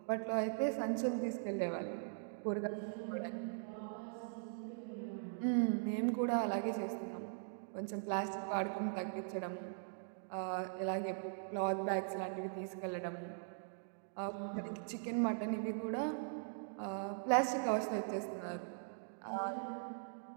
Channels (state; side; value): silent; left; digital silence